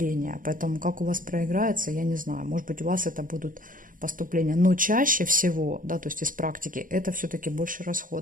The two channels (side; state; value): left; late; 0.40 ms